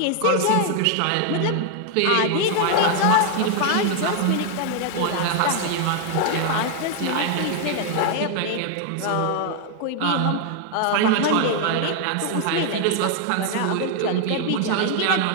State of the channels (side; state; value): both; different; correlation 0.00